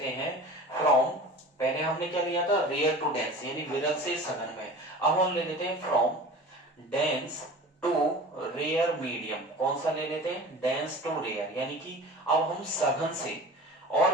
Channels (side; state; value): both; normal; correlation 0.38